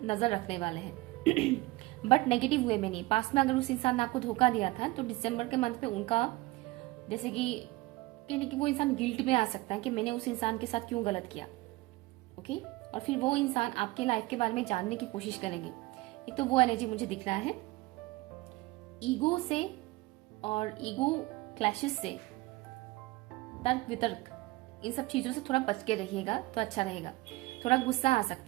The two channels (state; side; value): quieter; left; 20.9 dB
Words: नजर रखने वाले हैं बट नेगेटिव वे में नहीं। पास्ट में अगर उस इंसान ने आपको धोखा दिया था तो दिसंबर के मंथ में उनका, जैसे कि कहने कि वो इंसान गिल्ट में आ सकता है कि मैंने उस इंसान के साथ क्यों गलत किया, ओके। और फिर वो इंसान आपके लाइफ के बारे में जानने की कोशिश करेंगे। एक तो वो एनर्जी मुझे दिख रहा है। ईगो से और ईगो क्लैशेस से, तर्क वितर्क, इन सब चीजों से थोड़ा बच के रहिएगा तो अच्छा रहेगा। थोड़ा गुस्सा आ